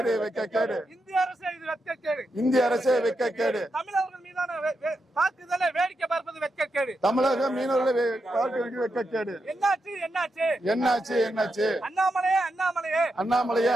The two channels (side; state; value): both; normal; correlation 0.85